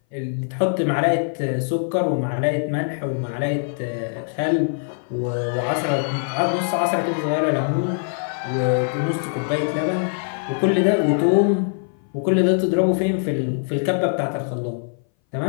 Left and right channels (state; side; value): silent; right; 59 dB below the other